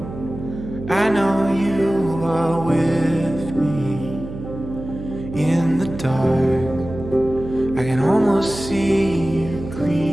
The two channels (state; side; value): noise; right; hum, 11 dB below the sound